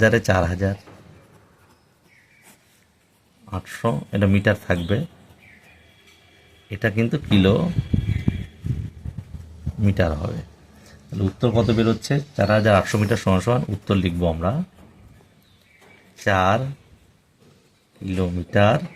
4000, 800, এটা মিটার থাকবে, এটা কিন্তু কিলো মিটার হবে। তাহলে উত্তর কত বেরোচ্ছে, 4800 মিটার সমান সমান, উত্তর লিখবো আমরা 4 কিলোমিটার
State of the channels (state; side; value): identical; both; correlation 1.00